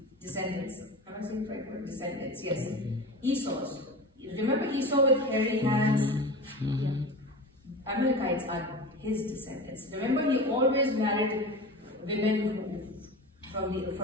Am I saying the right word? Descendants, yes. Esau's. Remember Esau with hairy hands? Amalekites are his descendants. Remember, he always married women from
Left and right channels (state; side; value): normal; both; correlation 0.30